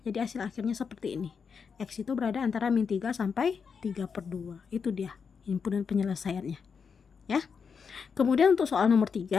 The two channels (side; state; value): right; quieter; 6.0 dB